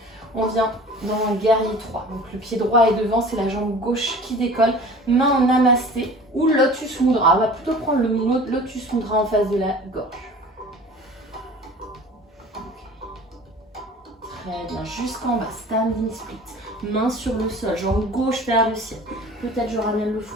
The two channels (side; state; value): both; normal; correlation 0.43